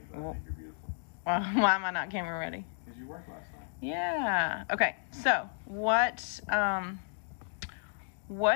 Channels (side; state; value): right; silent; 56 dB below the other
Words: but I think you're beautiful. Well, why am I not camera ready? Because you worked last night. Yeah. Okay. So what are